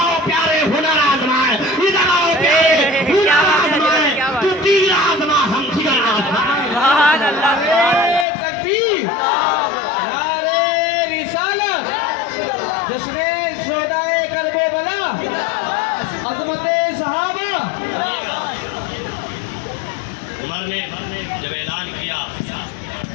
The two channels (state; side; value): drops out; right; at 8.2 s